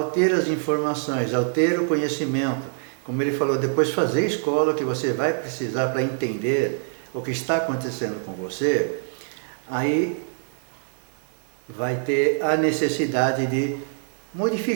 ter as informações, ao ter o conhecimento, como ele falou, depois fazer escola, que você vai precisar para entender o que está acontecendo com você, aí vai ter a necessidade de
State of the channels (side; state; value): left; silent; digital silence